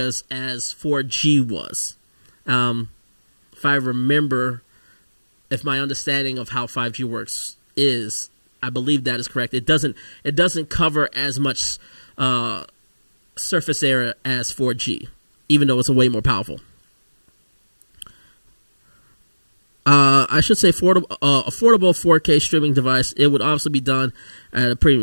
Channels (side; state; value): both; inverted; correlation -1.00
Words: as 4G was. If I remember, if my understanding of how 5G works is, I believe that is correct. It doesn't cover as much surface area as 4G, even though it's a way more powerful. I should say affordable 4K streaming device. It would obviously be done at a